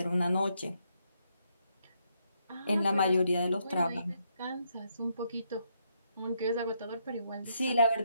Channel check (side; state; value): both; inverted; correlation -0.76